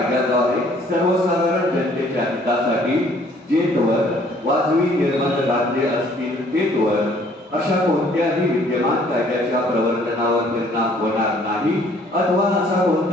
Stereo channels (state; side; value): normal; both; correlation 0.59